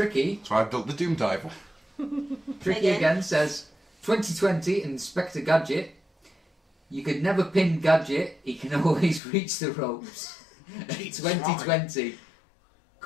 so I built the Doom Diver. Tricky again says 2020 Inspector Gadget. You could never pin Gadget, he can always reach the ropes. 2020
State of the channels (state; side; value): drops out; right; at 9.2 s